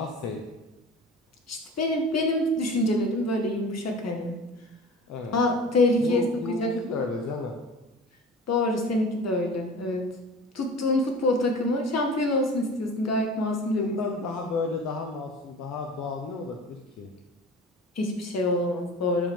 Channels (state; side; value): normal; both; correlation 0.38